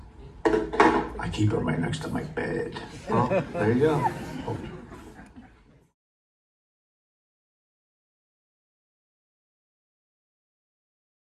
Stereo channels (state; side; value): identical; both; correlation 1.00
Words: I keep them right next to my bed. Well, there you go.